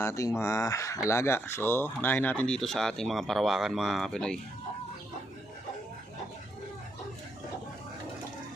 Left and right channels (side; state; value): both; normal; correlation 0.78